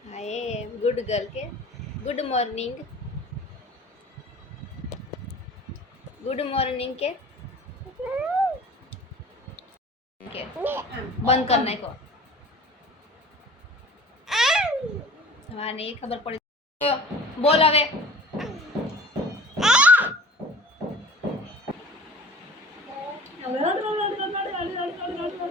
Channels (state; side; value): normal; both; correlation 0.43